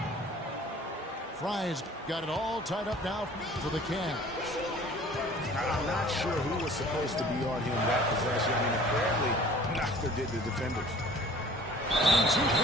Fry's got it all tied up now for the Cavs. I'm not sure who was supposed to be on him that possession. I mean, apparently neither did the defenders. And 2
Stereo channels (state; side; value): normal; both; correlation 0.49